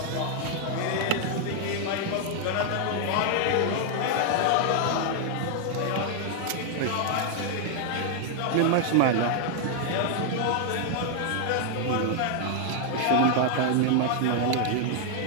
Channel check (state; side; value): different; both; correlation 0.00